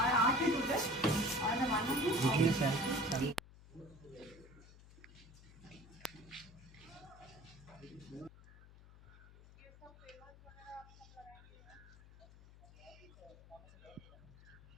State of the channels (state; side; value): noise; left; hum, 21 dB below the sound